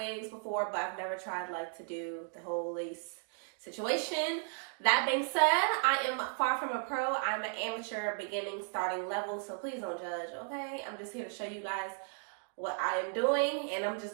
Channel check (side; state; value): left; silent; 54 dB below the other